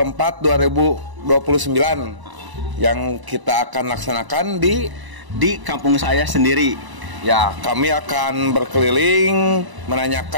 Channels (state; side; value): late; left; 1.0 ms